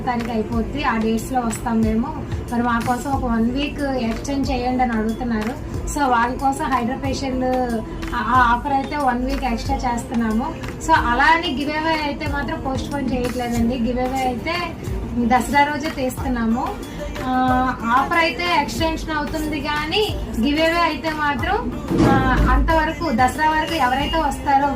తారీఖు అయిపోద్ది, ఆ డేట్స్లో వస్తాం మేము, మరి మా కోసం ఒక 1 వీక్ ఎక్స్టెండ్ చేయండి అని అడుగుతున్నారు. సో వాళ్ళ కోసం హైడ్రా ఫేషియల్ ఆఫర్ అయితే 1 వీక్ ఎక్స్ట్రా చేస్తున్నాము. సో అలా అని గివ్ అవే అయితే మాత్రం పోస్ట్ పోన్ చేయట్లేదండి. గివ్ అవే అయితే దసరా రోజే తీస్తున్నాము. ఆఫర్ అయితే ఎక్స్టెన్షన్ అవుతుంది, కానీ గివ్ అవే అయితే మాత్రం అంతవరకు దసరా వరకు ఎవరైతే వస్తారో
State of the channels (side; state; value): both; identical; correlation 1.00